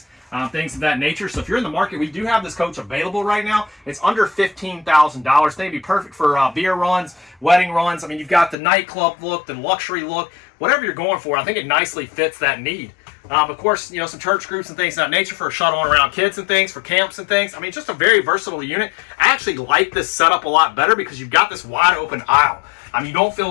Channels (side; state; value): right; drops out; at 8.6 s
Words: Things of that nature. So if you're in the market, we do have this coach available right now. It's under $15,000. They'd be perfect for beer runs, wedding runs. I mean, you've got the nightclub look, the luxury look, whatever you're going for. I think it nicely fits that need. Of course, some church groups and things of that nature for shuttling around kids and things, for camps and things. I mean, just a very versatile unit. I actually like this setup a lot better because you've got this wide open aisle. I mean, you don't